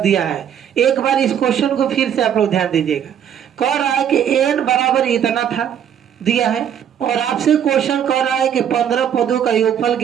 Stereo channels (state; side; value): quieter; left; 9.1 dB